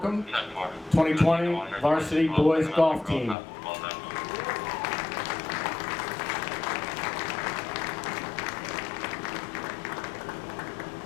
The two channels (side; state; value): right; drops out; at 3.4 s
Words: 2020 varsity boys golf team.